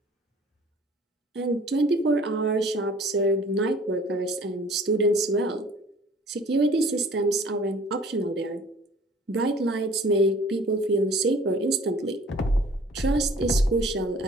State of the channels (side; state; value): both; normal; correlation 0.51